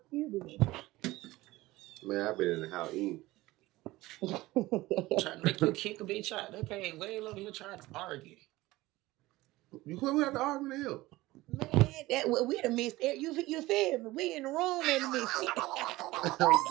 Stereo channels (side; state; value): left; quieter; 18.7 dB